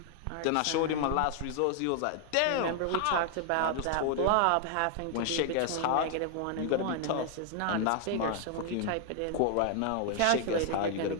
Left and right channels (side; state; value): both; different; correlation 0.00